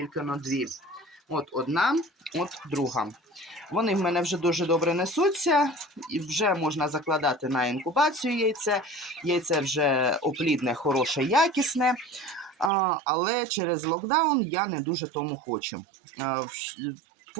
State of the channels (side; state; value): left; drops out; at 12.7 s